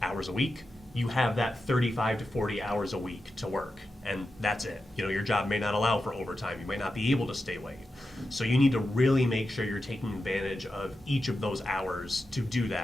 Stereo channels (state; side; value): normal; both; correlation 0.90